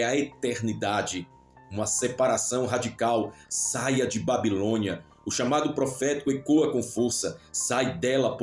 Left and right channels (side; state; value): both; identical; correlation 1.00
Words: a eternidade. Uma separação radical. Saia de Babilônia. O chamado profético ecoa com força. Sai dela,